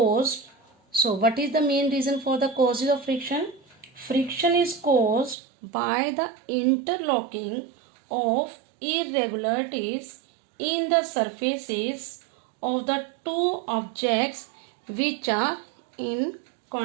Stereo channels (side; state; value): left; drops out; at 5.4 s